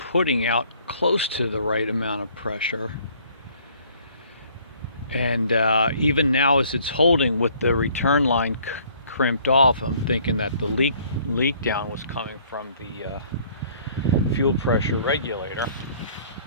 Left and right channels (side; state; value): both; inverted; correlation -0.58